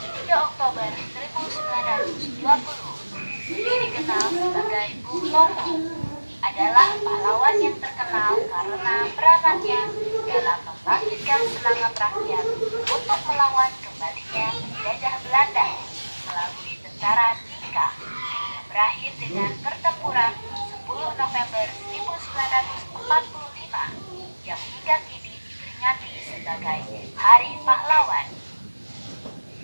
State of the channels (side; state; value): both; inverted; correlation -1.00